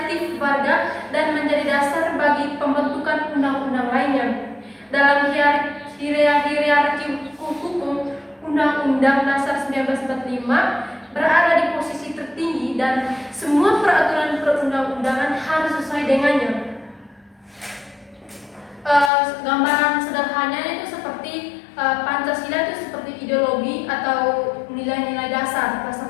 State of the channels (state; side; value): drops out; right; at 19.1 s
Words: warga, dan menjadi dasar bagi pembentukan undang-undang lainnya. Dalam hierarki hukum, Undang-Undang Dasar 1945 berada di posisi tertinggi dan semua peraturan perundang-undangan harus sesuai dengannya. Gambaran sederhananya itu seperti Pancasila itu seperti ideologi atau nilai-nilai dasar